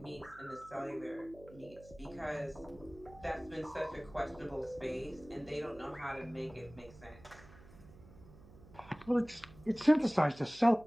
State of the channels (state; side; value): noise; right; hum, 21 dB below the sound